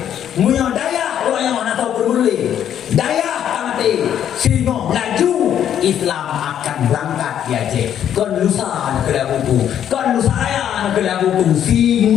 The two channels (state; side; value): quieter; right; 9.9 dB